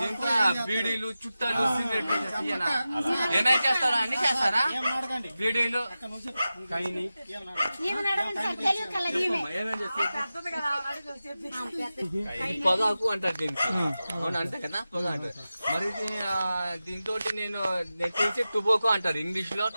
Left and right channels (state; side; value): inverted; both; correlation -0.94